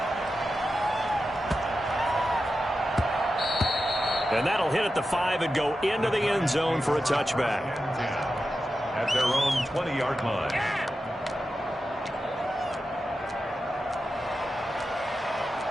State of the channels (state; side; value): normal; both; correlation 0.91